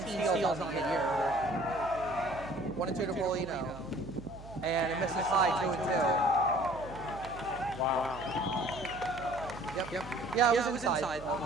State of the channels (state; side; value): noise; right; hum, 15 dB below the sound